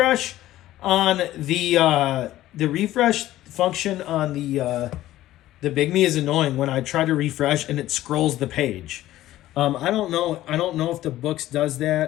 on the refresh function on the Bigme is annoying when I try to refresh and it scrolls the page. I don't know if the Boox does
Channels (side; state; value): right; quieter; 14.7 dB